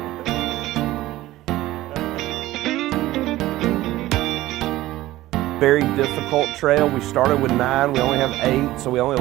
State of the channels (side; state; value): left; quieter; 16.3 dB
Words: Very difficult trail. We started with 9, we only have 8, so we only